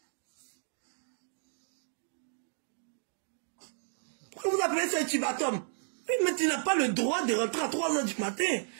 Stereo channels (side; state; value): left; silent; digital silence